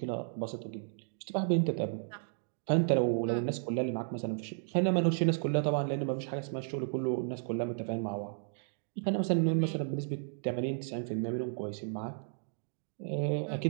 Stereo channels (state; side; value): silent; left; digital silence